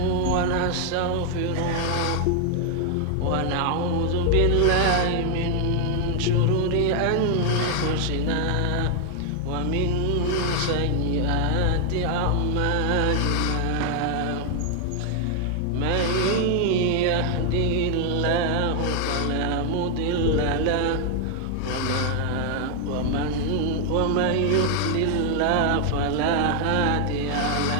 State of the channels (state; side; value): different; both; correlation 0.00